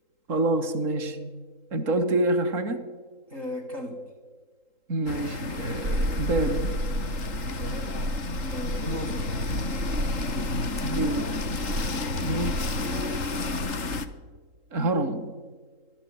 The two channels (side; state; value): left; late; 3.8 ms